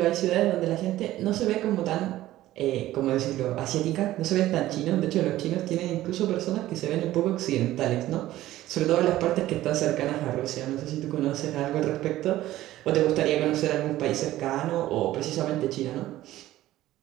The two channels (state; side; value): quieter; left; 15.0 dB